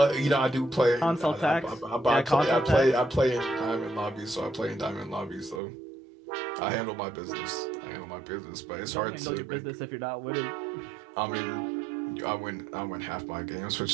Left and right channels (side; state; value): left; drops out; at 5.6 s